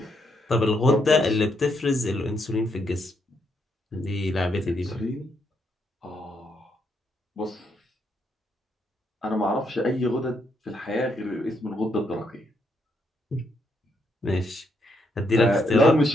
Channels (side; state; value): both; normal; correlation 0.77